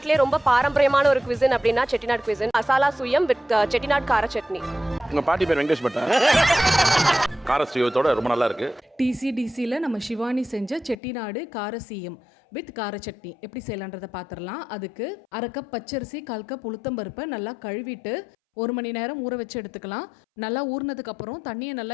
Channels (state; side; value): drops out; right; at 11.0 s